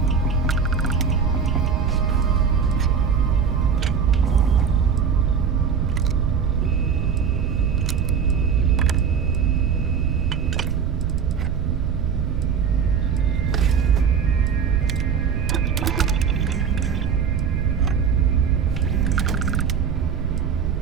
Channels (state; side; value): quieter; left; 6.8 dB